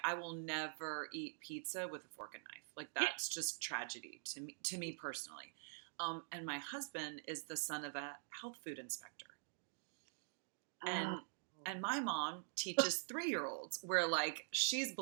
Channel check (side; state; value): left; silent; digital silence